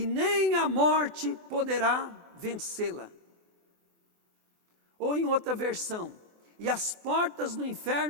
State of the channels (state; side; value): late; left; 24 ms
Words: nem a morte poderá vencê-la. Ou em outra versão, e as portas do